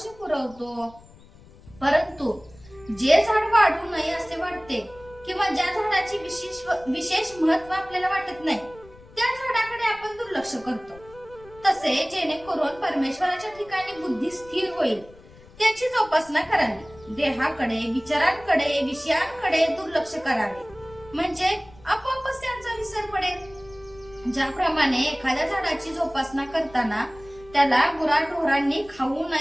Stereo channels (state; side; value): noise; left; rumble, 23 dB below the sound